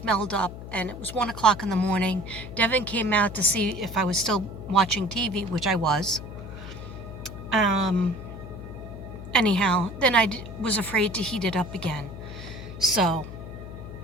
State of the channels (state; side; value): noise; left; hum, 11 dB below the sound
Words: up, and it was 1 o'clock in the morning. Devin came out to see if I was still watching TV, which I was. Anyhow, then I was afraid to heat it up again, so